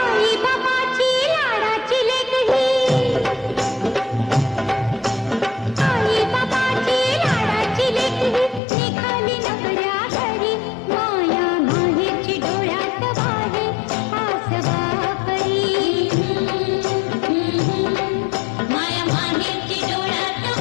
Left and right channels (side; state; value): right; drops out; at 8.6 s